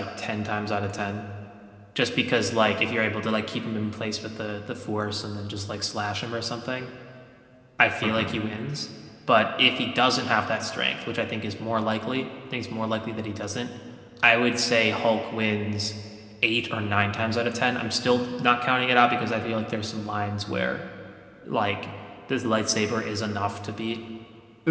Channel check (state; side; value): identical; both; correlation 1.00